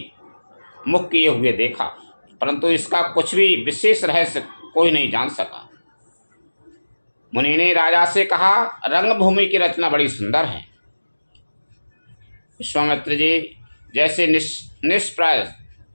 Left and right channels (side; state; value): both; inverted; correlation -1.00